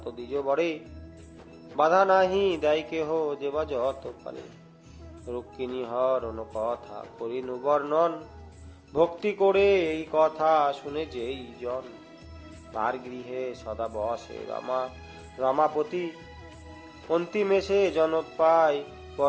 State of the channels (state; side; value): identical; both; correlation 1.00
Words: দ্বিজ বরে, বাধা নাহি দেয় কেহ যেবা যত পারে। রুক্মিণী হরণ কথা করিনু বর্ণন, ভক্তি করে এই কথা শুনে যেই জন, তার গৃহে সদা বসে রমাপতি, অন্তিমে সে জনক পায়